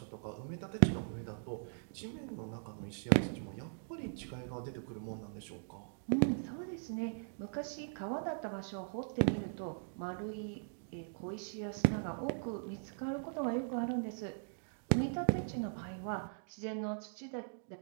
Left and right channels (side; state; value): left; silent; digital silence